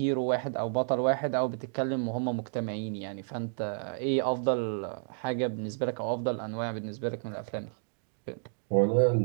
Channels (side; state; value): left; silent; digital silence